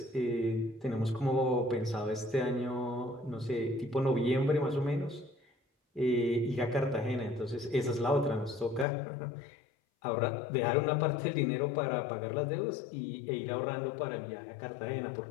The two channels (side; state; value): right; drops out; at 8.8 s